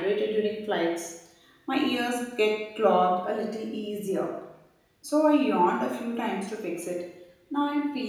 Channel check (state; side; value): identical; both; correlation 1.00